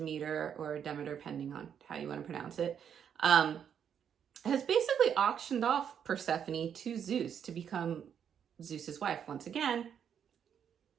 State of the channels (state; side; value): quieter; left; 8.3 dB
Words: or Demeter, depending on how you want to pronounce it, has basically auctioned off Persephone to Zeus to become Zeus's wife. Once again,